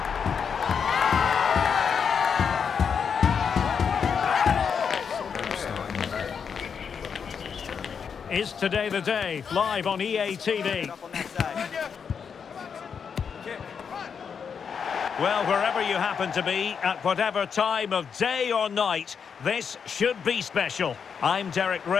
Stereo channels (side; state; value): right; quieter; 6.6 dB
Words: Is today the day? Live on EA TV. Well, wherever you happen to be, at whatever time of day or night, this should be special. I'm Derek